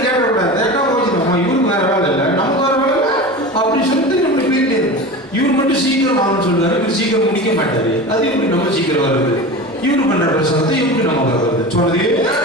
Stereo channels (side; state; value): both; normal; correlation 0.30